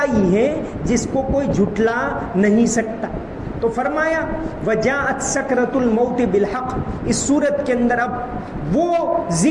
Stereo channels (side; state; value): both; identical; correlation 1.00